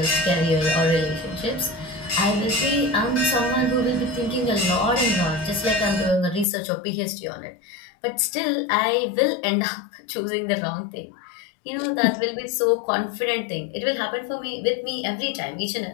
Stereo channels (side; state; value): right; drops out; at 6.5 s